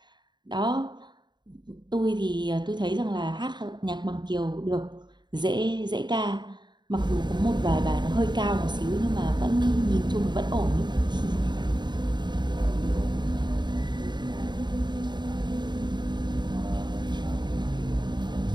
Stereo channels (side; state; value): left; late; 0.21 ms